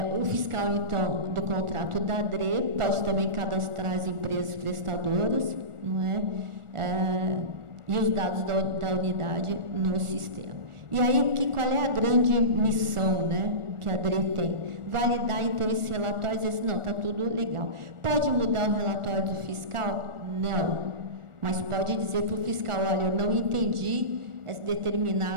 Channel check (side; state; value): left; late; 1.4 ms